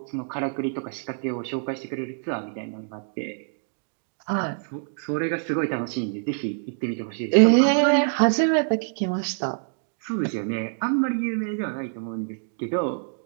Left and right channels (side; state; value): left; silent; digital silence